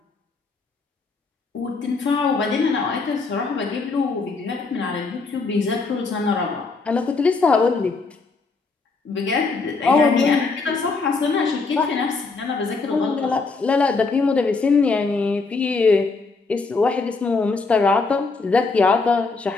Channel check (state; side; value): quieter; right; 4.1 dB